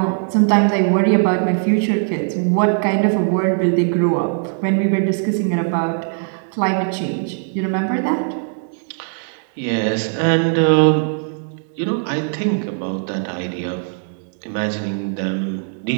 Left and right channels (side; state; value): left; silent; 65 dB below the other